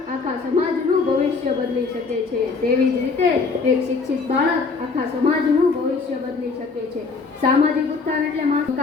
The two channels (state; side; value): quieter; right; 4.5 dB